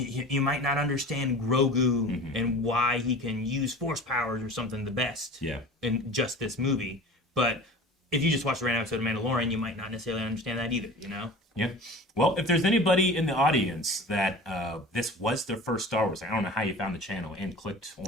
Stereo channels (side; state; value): both; normal; correlation 0.38